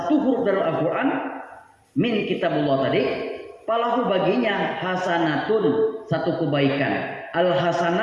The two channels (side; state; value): both; identical; correlation 1.00